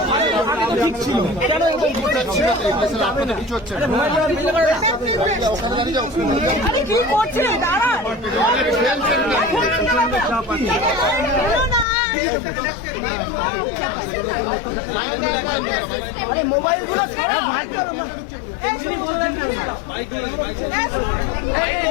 ঠিক ছিল কেন কিছু হচ্ছে কি করছে আরে মোবাইল গুলো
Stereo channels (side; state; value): right; drops out; at 11.9 s